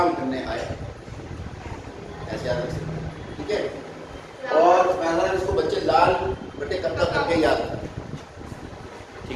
करने आया, ऐसे याद रख सकते, ठीक है। और पहला इसको बच्चे लाल बटे कक्का करके याद रखते,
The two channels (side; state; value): both; identical; correlation 1.00